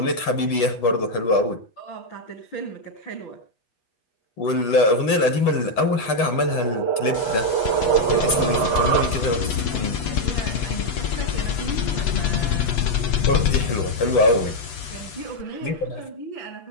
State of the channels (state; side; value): late; right; 8.2 ms